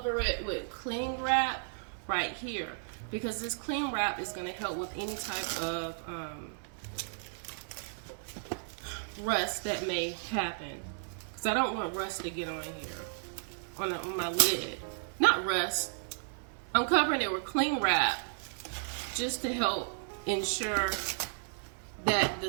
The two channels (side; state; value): left; silent; digital silence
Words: it with cling wrap right here, because this cling wrap is going to help with any type of rust that may happen, because I don't want rust to get on here, on my lid. Not rust. I'm covering it with cling wrap just to help ensure that